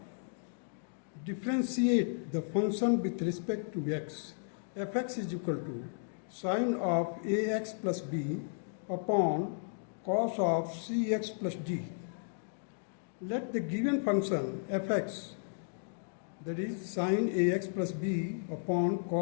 Differentiate the function with respect to x. Fx is equal to sine of ax plus b upon cos of cx plus d. Let the given function fx, that is sine ax plus b upon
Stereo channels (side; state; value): right; silent; digital silence